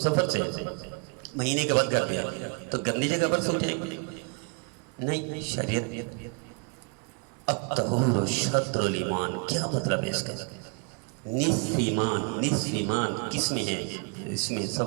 سے مہینے کے بعد گھر پہ تو گندی جگہ پر سو جائے گی؟ نہیں. شریعت الطہور شطر الایمان، کیا مطلب ہے اس کا؟ نصف ایمان. نصف ایمان کس میں ہے؟ اس میں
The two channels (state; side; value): quieter; left; 34.6 dB